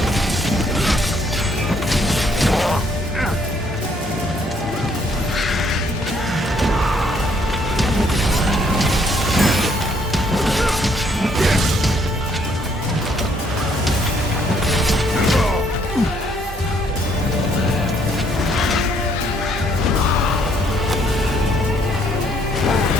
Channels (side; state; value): both; normal; correlation 0.67